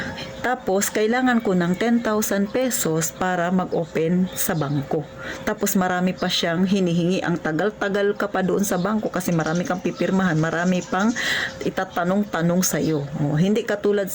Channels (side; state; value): both; identical; correlation 1.00